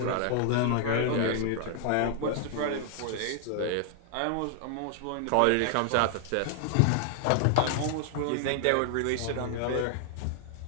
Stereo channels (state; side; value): different; both; correlation 0.00